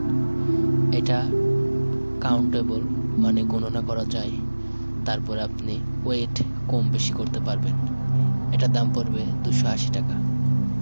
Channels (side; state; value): both; inverted; correlation -1.00